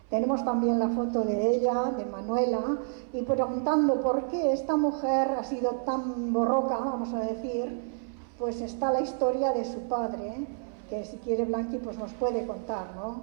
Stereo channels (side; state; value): left; silent; 59 dB below the other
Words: Tenemos también la foto de ella, de Manuela, y preguntando por qué esta mujer ha sido tan borroca, vamos a decir, pues está la historia de su padre, que si quiere Blanqui pues nos puede contar, ¿no?